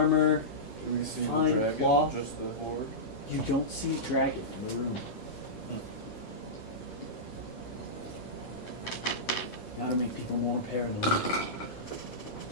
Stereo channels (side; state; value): right; late; 9.3 ms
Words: Do we see Fine the dragon? cloth. Just the horde? You don't see a dragon in the room. How to make people more paranoid. No.